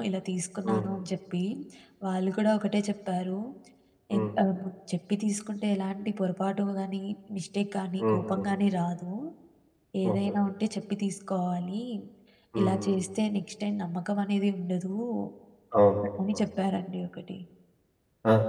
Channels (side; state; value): both; identical; correlation 1.00